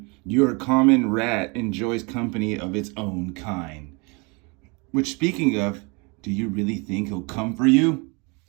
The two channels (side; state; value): left; quieter; 29.8 dB